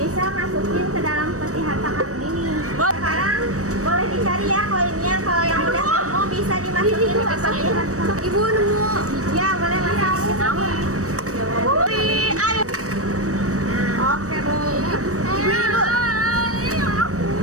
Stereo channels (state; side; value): late; left; 0.65 ms